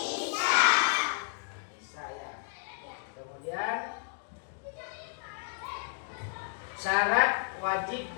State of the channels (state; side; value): silent; right; digital silence